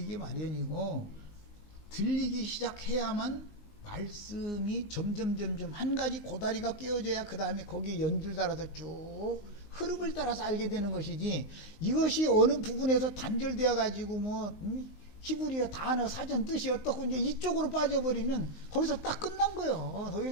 마련이고, 들리기 시작해야만 말씀이 점점 한 가지 고다리가 끼워져야 그 다음에 거기에 연줄 따라서 쭉 흐름을 따라서 알게 되는 것이지, 이것이 어느 부분에서 단절되어 가지고 뭐 히브리어 단어 사전 뜻이 어떻고 이제 이쪽으로 빠져버리면 거기서 딱 끝난 거예요. 더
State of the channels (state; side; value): late; right; 19 ms